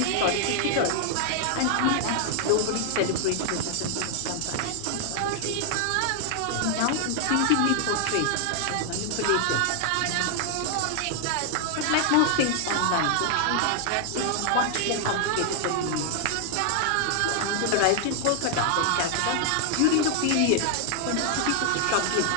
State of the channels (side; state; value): both; different; correlation 0.00